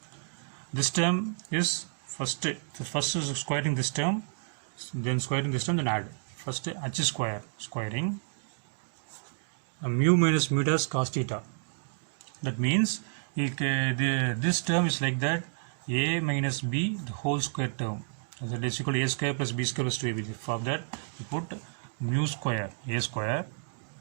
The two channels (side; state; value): left; silent; digital silence